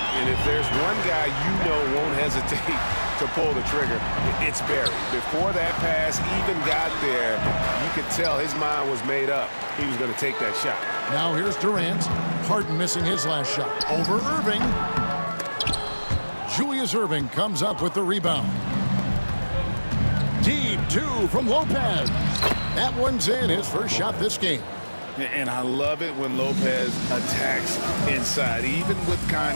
And if there's one guy you know won't hesitate to pull the trigger, it's Barry. Before that pass even got there, you could tell his mind was made up. He was going to take that shot. Now here's Durant. Harden missing his last shot. Over Irving. Julius Irving comes up with the rebound. Deep 2 from Lopez. That one's in, his first shot this game. And I love it when Lopez attacks inside. Even with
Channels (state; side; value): inverted; both; correlation -1.00